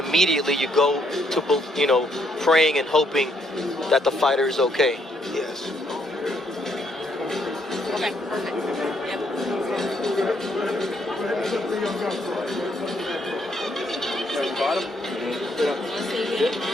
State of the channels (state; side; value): normal; both; correlation 0.72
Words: you go to, praying and hoping that the fighter is okay. Yes. Okay, perfect. Yep.